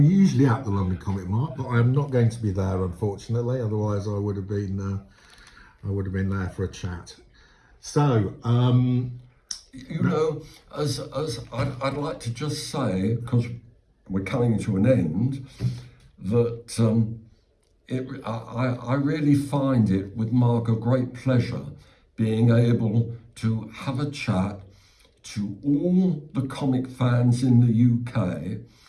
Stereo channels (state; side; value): identical; both; correlation 1.00